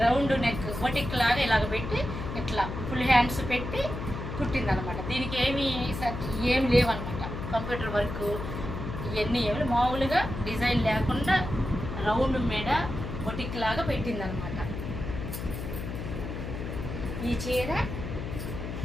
రౌండ్ నెక్ బొటిక్ లాగా ఇలాగ పెట్టి ఇట్లా ఫుల్ హ్యాండ్స్ పెట్టి కుట్టిందనమాట. దీనికి ఏమి లేవన్నమాట. కంప్యూటర్ వర్క్ ఇవన్నీ ఏమి మామూలుగా డిజైన్ లేకుండా రౌండ్ మీద బొటిక్ లాగా పెట్టిందనమాట. ఈ చీర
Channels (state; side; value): noise; left; hum, 6 dB below the sound